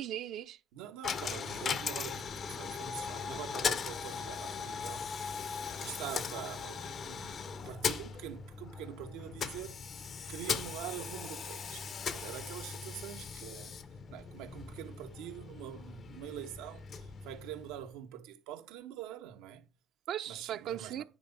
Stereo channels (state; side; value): normal; both; correlation 0.62